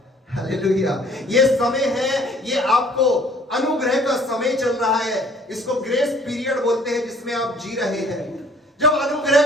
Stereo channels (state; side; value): normal; both; correlation 0.56